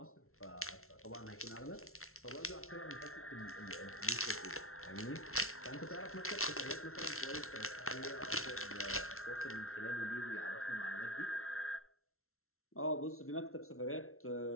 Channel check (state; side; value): late; right; 0.62 ms